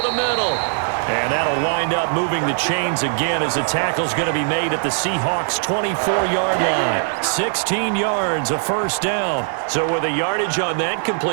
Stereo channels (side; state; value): left; silent; 66 dB below the other